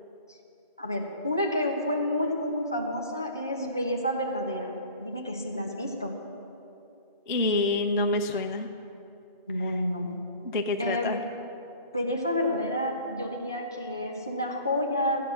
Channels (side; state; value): both; inverted; correlation -0.45